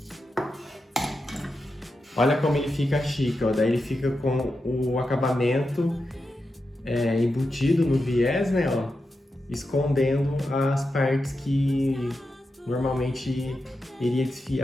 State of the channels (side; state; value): both; normal; correlation 0.89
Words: Olha como ele fica chique, ó. Daí ele fica com o acabamento embutido no viés, né, ó, escondendo as partes que normalmente iria